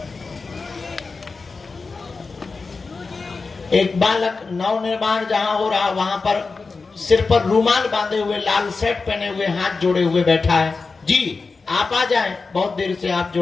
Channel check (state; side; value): quieter; right; 4.3 dB